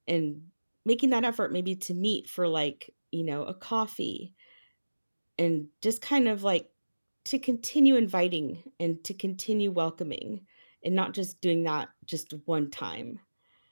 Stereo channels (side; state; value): both; inverted; correlation -1.00